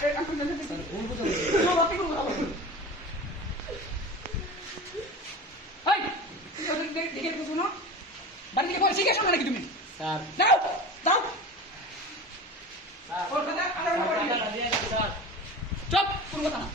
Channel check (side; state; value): both; normal; correlation 0.33